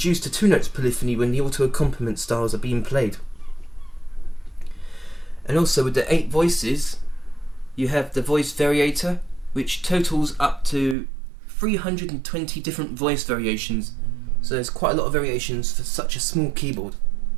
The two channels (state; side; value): drops out; left; at 11.0 s